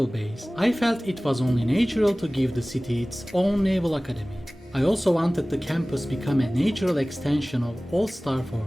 base, I felt it was only natural to give the city its own Naval Academy. I also wanted the campus become a natural extension of Old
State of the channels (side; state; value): both; normal; correlation 0.98